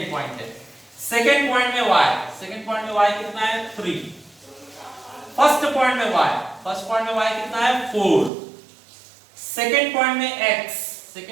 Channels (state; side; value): drops out; left; at 8.3 s